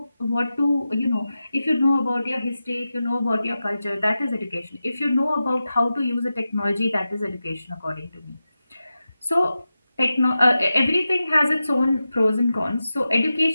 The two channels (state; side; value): inverted; both; correlation -0.92